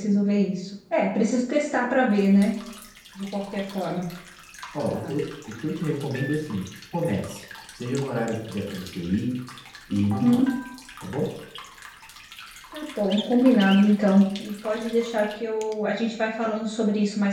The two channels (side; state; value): both; identical; correlation 1.00